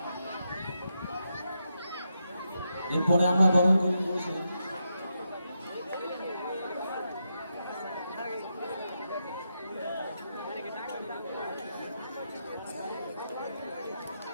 এরপরে আমরা বরণ করে নিব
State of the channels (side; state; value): both; inverted; correlation -0.85